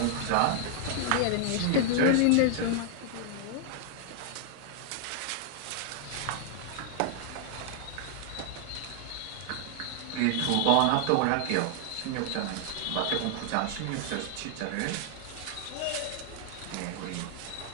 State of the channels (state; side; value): different; both; correlation 0.00